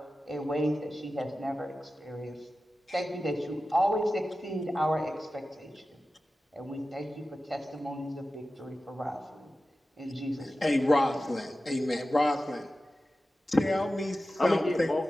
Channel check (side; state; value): both; normal; correlation 0.94